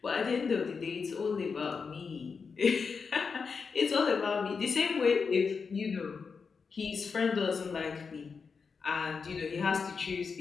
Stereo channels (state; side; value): quieter; right; 5.3 dB